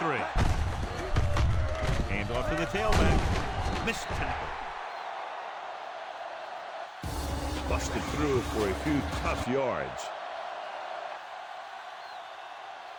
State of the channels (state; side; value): identical; both; correlation 1.00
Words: Hand off to the tailback. Missed tackle. Busted through for a few tough yards.